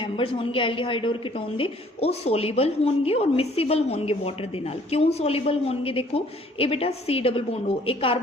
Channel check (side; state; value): both; normal; correlation 0.58